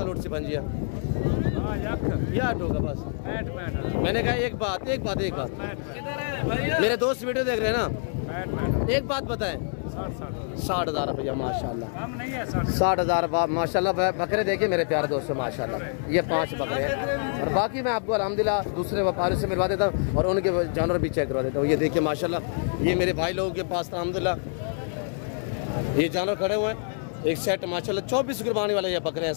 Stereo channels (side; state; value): right; silent; digital silence